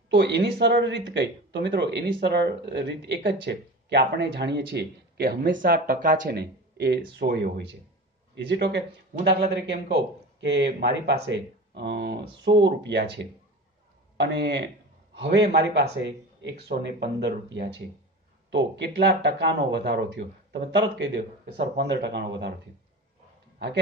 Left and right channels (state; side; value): normal; both; correlation 0.32